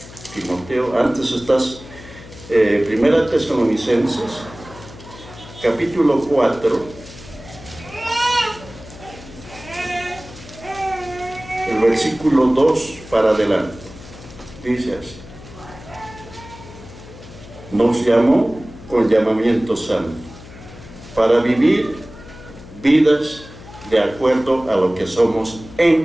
Timoteo, antes estás, Primera Tesalonicenses, capítulo 4, el versículo 2 para adelante, dice así: nos llamó con llamamiento santo, para vivir vidas de acuerdo a lo que somos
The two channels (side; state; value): left; noise; hum, 17 dB below the sound